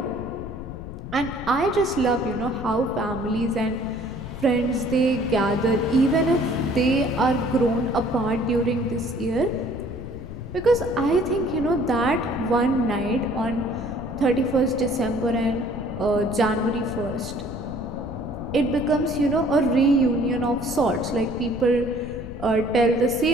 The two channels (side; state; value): left; noise; rumble, 11 dB below the sound